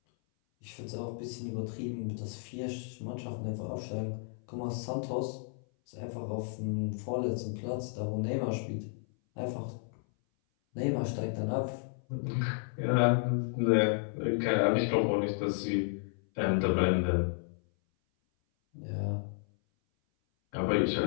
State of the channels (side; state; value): right; silent; 56 dB below the other